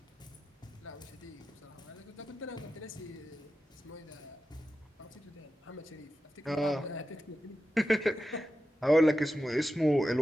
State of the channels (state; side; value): normal; both; correlation 0.92